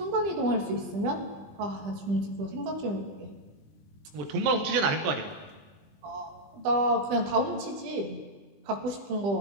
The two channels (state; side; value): late; left; 20 ms